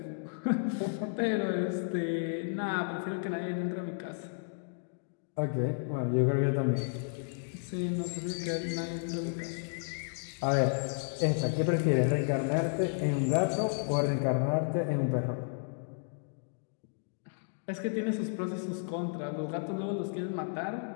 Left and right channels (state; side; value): silent; right; digital silence